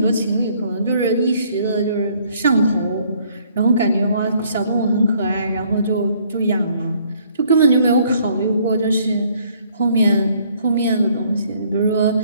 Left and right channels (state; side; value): inverted; both; correlation -0.63